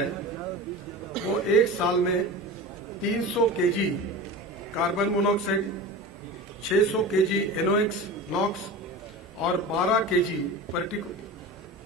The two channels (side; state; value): both; normal; correlation 0.30